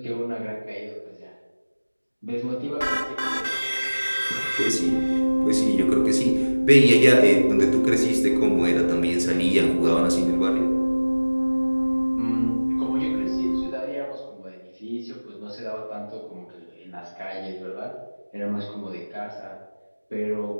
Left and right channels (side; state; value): both; inverted; correlation -1.00